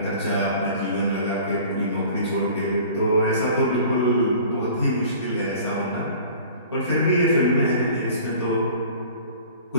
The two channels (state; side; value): inverted; both; correlation -0.45